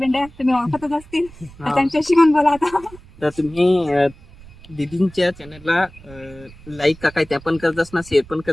तुम्ही ओळखतच असतील, तर त्यांच्याशी पण बोला आता. तर तुम्ही दीदींच्या चॅनलला लाईक का काय त्या पण करतास ना, शेअर पण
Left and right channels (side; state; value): right; noise; rumble, 21 dB below the sound